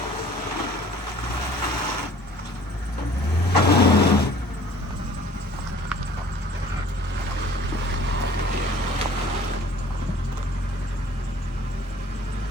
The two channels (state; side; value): normal; both; correlation 0.51